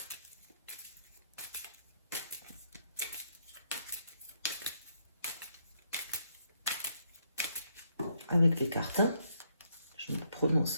Avec les cartes. Je me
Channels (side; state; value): both; inverted; correlation -0.74